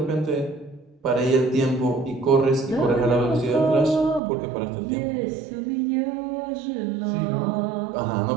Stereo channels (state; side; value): drops out; left; at 4.2 s